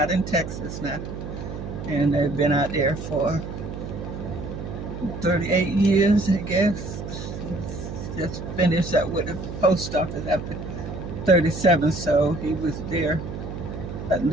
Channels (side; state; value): right; noise; hum, 8 dB below the sound